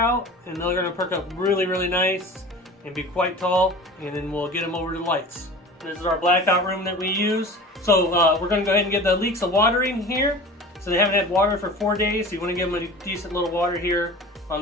and they're going to perk up really, really nice and be quite tall, and then we'll get them over to the lights. This is our blackout room that we use. So we're going to go ahead and give the leeks a watering here. So they haven't had water for 4 days, so you want to give them a decent little water here on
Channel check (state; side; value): normal; both; correlation 0.38